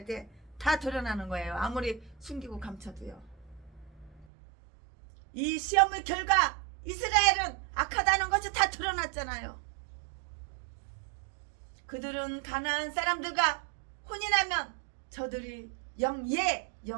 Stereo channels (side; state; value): left; drops out; at 4.2 s